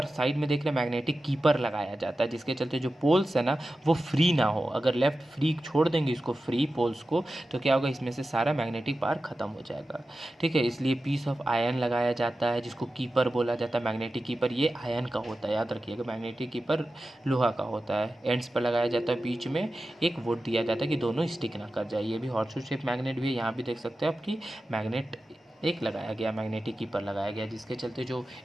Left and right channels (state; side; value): normal; both; correlation 0.93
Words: साइड में देख रहे मैग्नेटिक कीपर लगाया जाता है, जिसके चलते जो पोल्स है ना वो फ्री ना हो। अगर लेफ्ट फ्री छोड़ देंगे इसको, फ्री पोल्स को, तो क्या होगा, इसमें से सारा मैग्नेटिक पावर खत्म हो जाएगा। ठीक है, इसलिए पीस ऑफ आयरन लगाया जाता है, जिसको कीपर बोला जाता है। मैग्नेटिक कीपर ये आयरन का होता है, याद रखिएगा, मैग्नेटिक कीपर लोहा का होता है। एंड्स पर लगाया जाता है, बीच में एक वुड दिया जाता है कि दोनों स्टिक ना कर जाए। ये भी हॉर्सशू शेप मैग्नेट भी है, यहाँ भी देख सकते हैं आपकी मैग्नेट एक लगाया गया, मैग्नेटिक कीपर लगाया गया, जिसके चलते जो